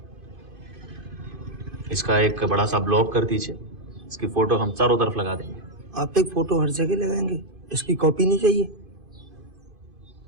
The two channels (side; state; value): left; late; 2.5 ms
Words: इसका एक बड़ा सा ब्लॉग कर दीजिए। इसकी फोटो हम चारों तरफ लगा देंगे। आप एक फोटो हर जगह लगाएंगे, इसकी कॉपी नहीं चाहिए?